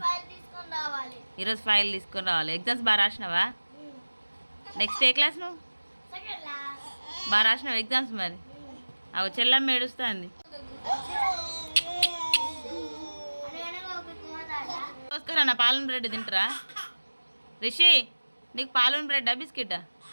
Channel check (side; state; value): both; inverted; correlation -1.00